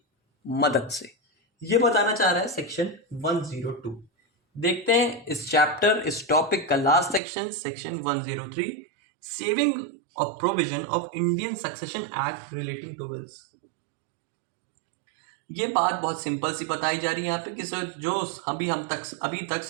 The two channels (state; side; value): drops out; left; at 7.2 s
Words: मदद से। ये बताना चाह रहा है सेक्शन 102। देखते हैं इस चैप्टर इस टॉपिक का last section, section 103, saving of provision of Indian succession act relating to wills. ये बात बहुत सिंपल सी बताई जा रही है यहाँ पे कि सर जो अभी तक